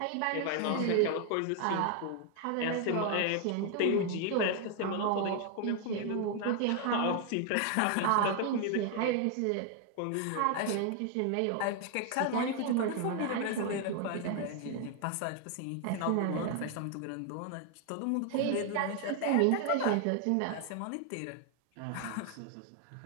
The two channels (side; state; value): both; different; correlation 0.00